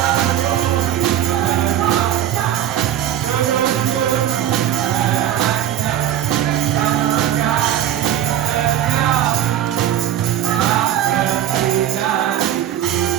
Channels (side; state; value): left; quieter; 11.6 dB